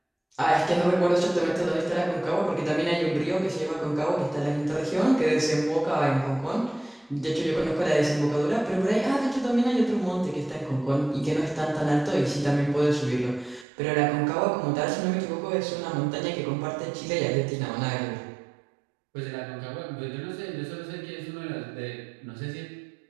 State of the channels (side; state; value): left; drops out; at 13.7 s